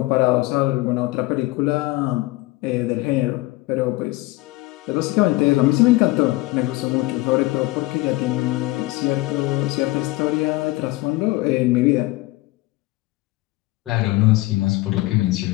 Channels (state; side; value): quieter; right; 20.0 dB